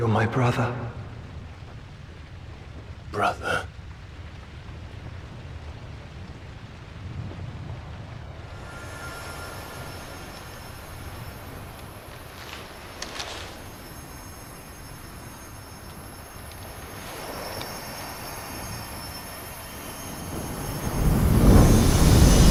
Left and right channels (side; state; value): both; identical; correlation 1.00